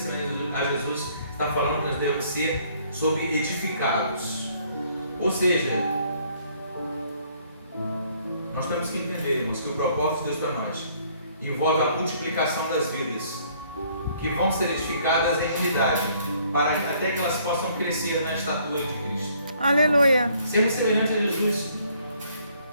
a Jesus, está falando que nós devemos ser sobre edificados. Ou seja, nós temos que entender, irmãos, que o propósito de Deus para nós envolve a multiplicação das vidas, que vão ser edificadas em unidade, para até que elas possam crescer na estatura de Cristo. Aleluia. Sermos semelhantes a Jesus.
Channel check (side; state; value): both; inverted; correlation -0.63